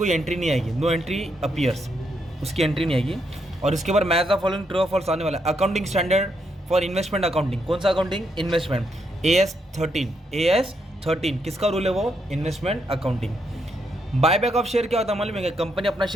एंट्री नहीं आएगी। नो एंट्री अपीयर्स, उसकी एंट्री नहीं आएगी। और इसके बाद मैच द फॉलोइंग ट्रू और फॉल्स आने वाला है। Accounting standard for investment accounting, कौन सा अकाउंटिंग? इन्वेस्टमेंट। AS13 किसका रूल है? वो investment accounting. Buyback of share क्या होता है मालूम है? कंपनी अपना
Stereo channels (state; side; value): normal; both; correlation 0.78